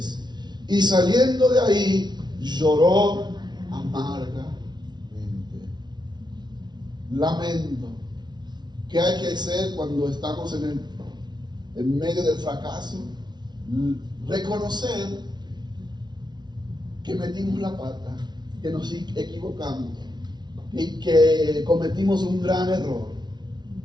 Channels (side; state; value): left; late; 0.20 ms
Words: Y saliendo de ahí, lloró amargamente. Lamento. ¿Qué hay que hacer cuando estamos en medio del fracaso? Reconocer que metimos la pata, que nos equivocamos y que cometimos un gran error.